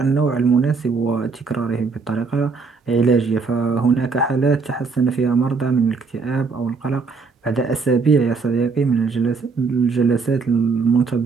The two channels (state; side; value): quieter; left; 4.7 dB